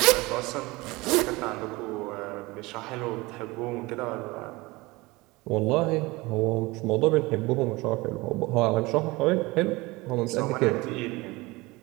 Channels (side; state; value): left; quieter; 22.3 dB